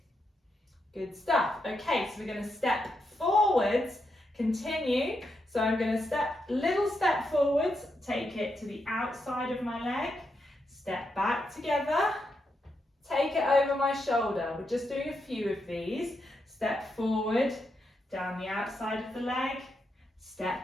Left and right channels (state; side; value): normal; both; correlation 0.83